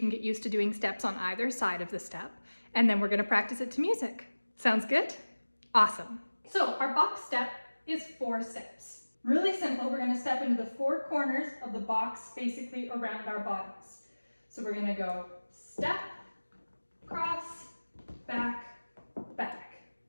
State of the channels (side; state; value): both; inverted; correlation -1.00